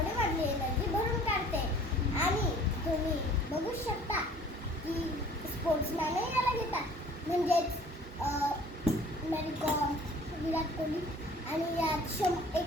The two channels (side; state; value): both; normal; correlation 0.51